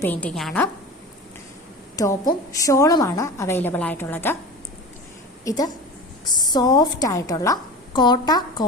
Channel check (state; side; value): normal; both; correlation 0.32